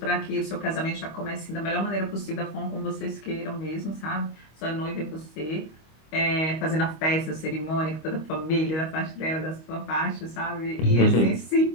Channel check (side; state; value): right; late; 25 ms